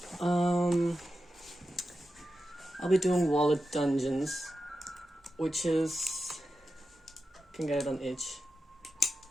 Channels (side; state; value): both; normal; correlation 0.91